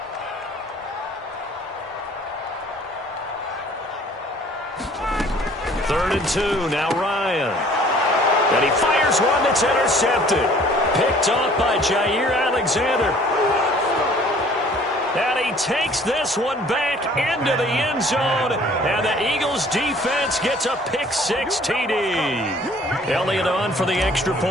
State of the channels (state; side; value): normal; both; correlation 0.54